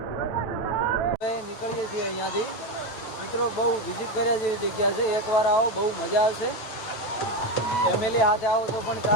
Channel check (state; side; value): late; right; 9.0 ms